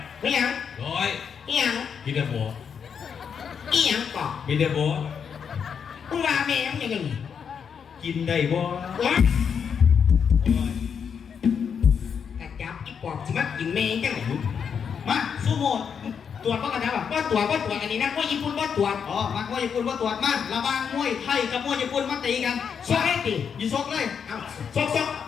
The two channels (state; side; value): quieter; right; 7.0 dB